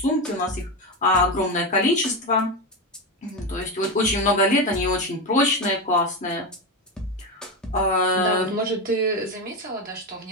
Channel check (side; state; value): both; normal; correlation 0.15